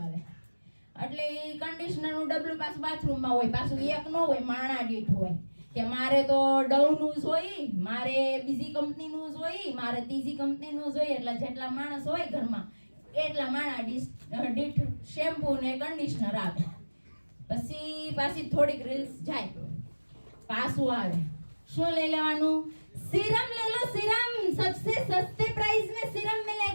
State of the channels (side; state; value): both; inverted; correlation -1.00